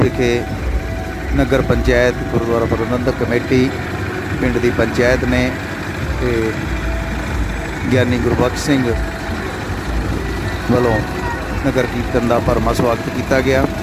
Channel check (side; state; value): both; identical; correlation 1.00